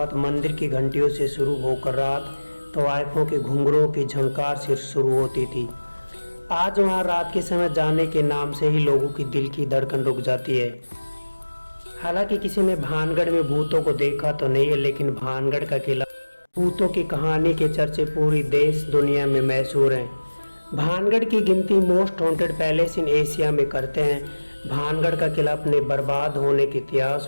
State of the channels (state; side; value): inverted; both; correlation -1.00